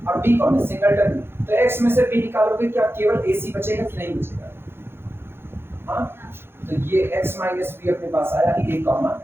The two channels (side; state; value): left; late; 0.11 ms